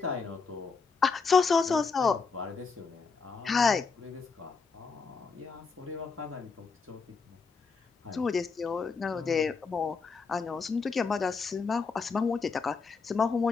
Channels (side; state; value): right; quieter; 4.9 dB